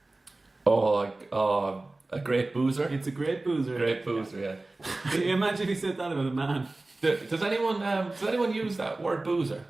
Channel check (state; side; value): quieter; left; 3.0 dB